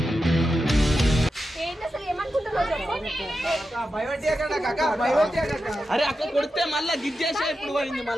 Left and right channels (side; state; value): both; normal; correlation 0.90